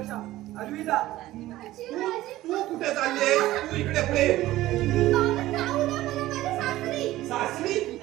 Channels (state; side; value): quieter; left; 15.9 dB